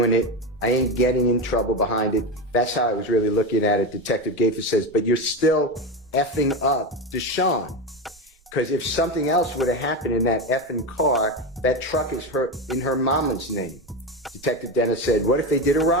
it. I ain't getting in trouble behind it. That's how I was really looking at it. Detective Gaither says, but you're still effing up Deshaun. Because if something else would have happened in that effing car, that truck is in her mama's name. Detective Dennis said, what if they did a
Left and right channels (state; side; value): normal; both; correlation 0.17